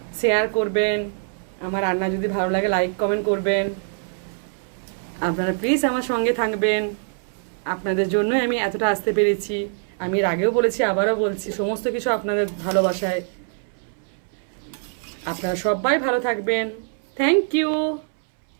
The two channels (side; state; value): left; silent; 63 dB below the other